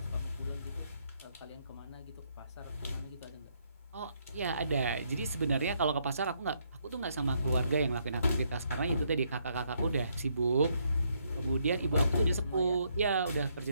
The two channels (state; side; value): inverted; both; correlation -0.73